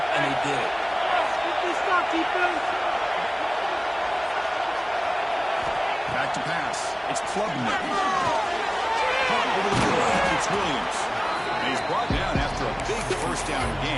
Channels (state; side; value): identical; both; correlation 1.00